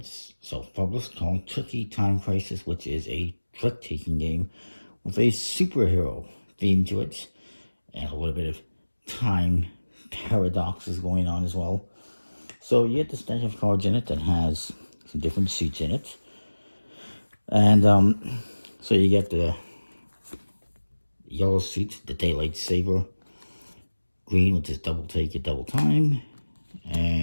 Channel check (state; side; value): inverted; both; correlation -1.00